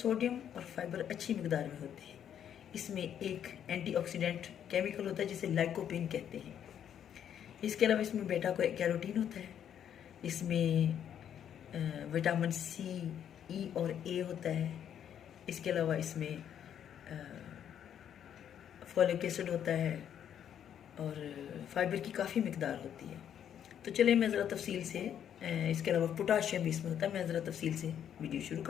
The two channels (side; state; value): right; quieter; 9.4 dB